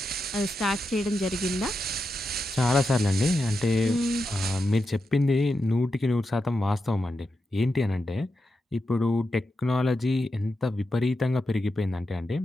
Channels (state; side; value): normal; both; correlation 0.88